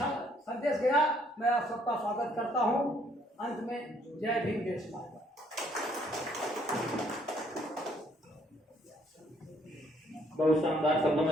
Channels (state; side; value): normal; both; correlation 0.66